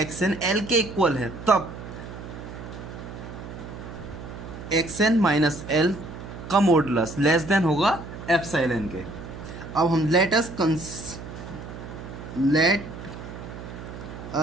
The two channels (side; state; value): right; noise; hum, 11 dB below the sound